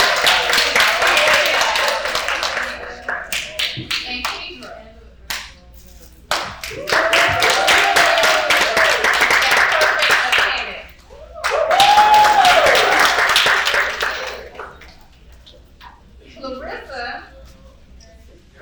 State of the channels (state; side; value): identical; both; correlation 1.00